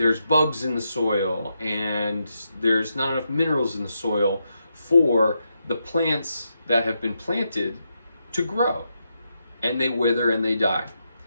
bugs in the soil, and there's not enough minerals in the soil for the plants that have been planted to grow. And they wither and they die.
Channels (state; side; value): inverted; both; correlation -0.84